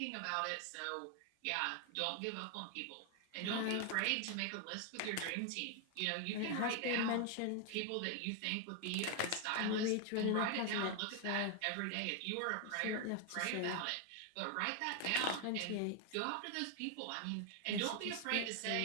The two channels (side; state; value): both; different; correlation 0.01